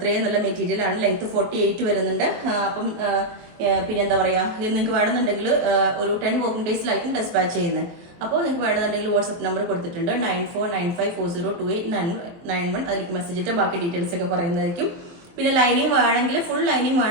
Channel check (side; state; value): left; late; 23 ms